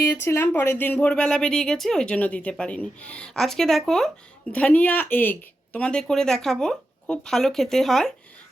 পরের দিন ভোরবেলা বেরিয়ে গেছি, ওই জন্য দিতে পারিনি। আজকে দেখো ধনিয়া এগ তোমাদের করে দেখাবো, খুব ভালো খেতে হয়।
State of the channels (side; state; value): both; normal; correlation 0.89